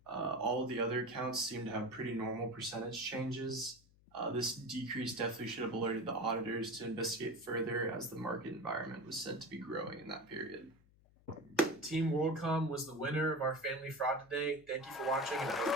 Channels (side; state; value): left; noise; hum, 28 dB below the sound